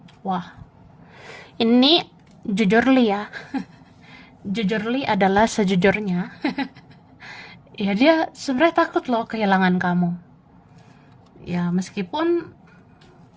Wah, ini jujurly ya. Jujurly adalah sejujurnya. Ya dia sebenarnya takut loh kehilangan kamu. Ya meskipun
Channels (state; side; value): identical; both; correlation 1.00